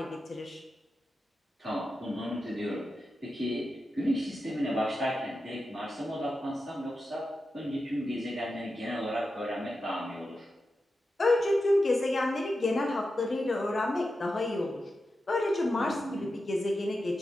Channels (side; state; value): both; normal; correlation 0.90